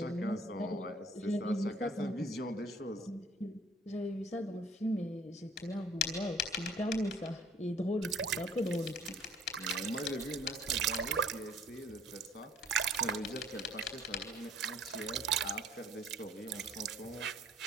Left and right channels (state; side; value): normal; both; correlation 0.57